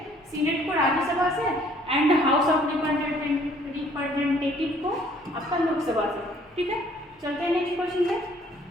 सीनेट को राज्यसभा से एंड हाउस ऑफ रिप्रेजेंटेटिव को आपका लोकसभा से, ठीक है। चलते हैं नेक्स्ट क्वेश्चन पे।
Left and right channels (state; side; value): normal; both; correlation 0.59